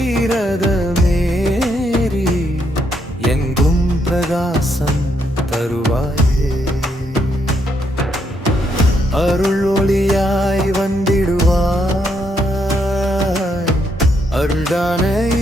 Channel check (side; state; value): both; normal; correlation 0.76